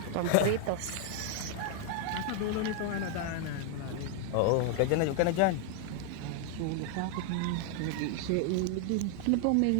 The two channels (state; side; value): different; both; correlation 0.00